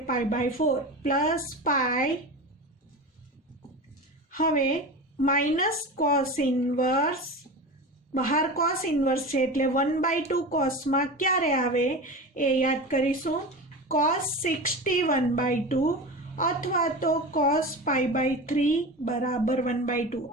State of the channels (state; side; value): normal; both; correlation 0.28